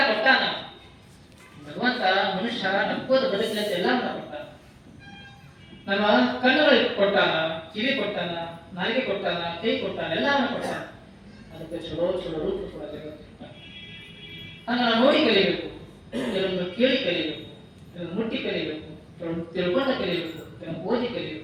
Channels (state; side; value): identical; both; correlation 1.00